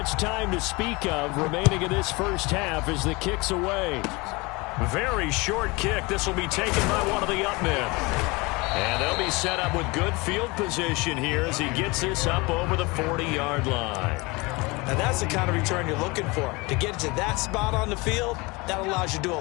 time to speak of remaining in this first half as the kick's away. Very short kick. This will be taken by one of the up men. And they'll be set up with good field position here as he gets this up over the 40-yard line. And that's the kind of return you're looking for. To get to that spot on the field, that allows you to do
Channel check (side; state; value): right; quieter; 25.3 dB